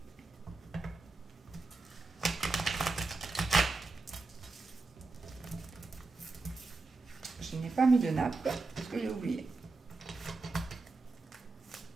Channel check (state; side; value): quieter; left; 3.6 dB